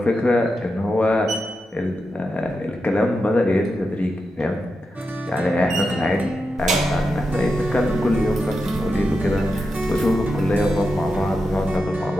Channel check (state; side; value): normal; both; correlation 0.88